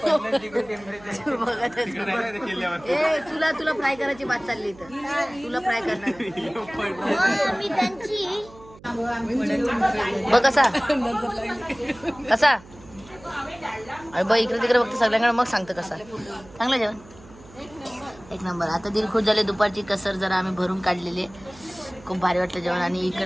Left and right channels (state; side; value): noise; right; hum, 22 dB below the sound